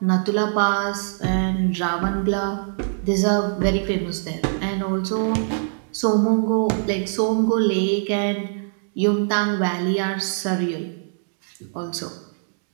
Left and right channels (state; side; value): silent; left; digital silence